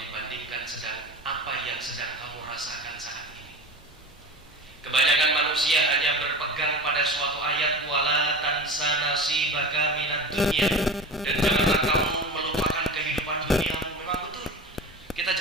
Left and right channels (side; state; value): both; normal; correlation 0.31